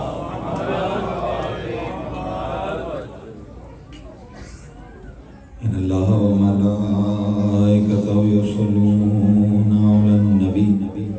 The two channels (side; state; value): both; identical; correlation 1.00